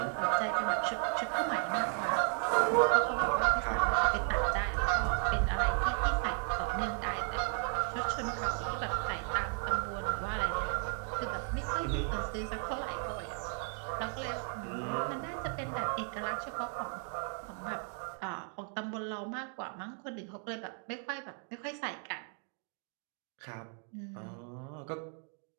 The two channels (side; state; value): left; quieter; 39.3 dB